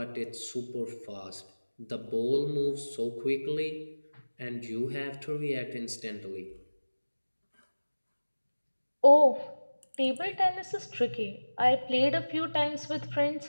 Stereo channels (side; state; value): both; inverted; correlation -1.00